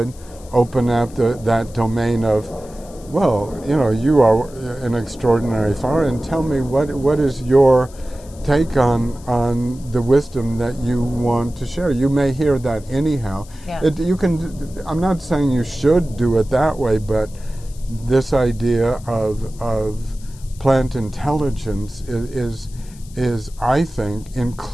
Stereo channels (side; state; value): left; noise; hiss, 23 dB below the sound